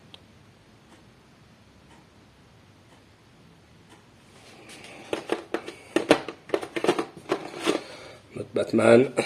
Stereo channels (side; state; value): both; identical; correlation 1.00